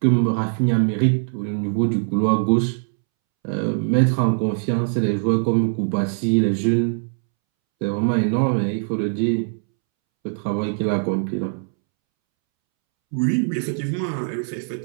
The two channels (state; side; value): silent; left; 65 dB below the other